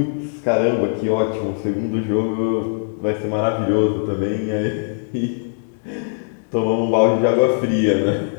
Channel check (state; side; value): silent; right; digital silence